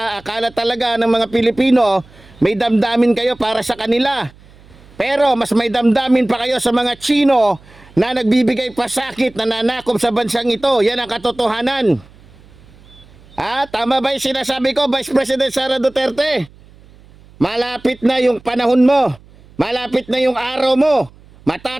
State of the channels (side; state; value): right; noise; hum, 25 dB below the sound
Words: talaga ng mga Pilipino may damdamin kayo para sa kanila. Pero mas may damdamin pa kayo sa mga Chino na nagbibigay pasakit, na nanakop sa bansang ito. Yan ang katotohanan. Tama ba yung sinasabi ko, Vice President Sara Duterte? Malapit na yung panahon mo. Malapit na yung araw mo.